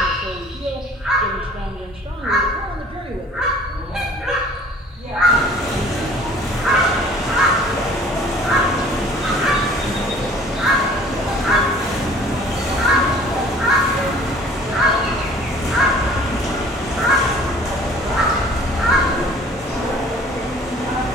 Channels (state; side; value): normal; both; correlation 0.50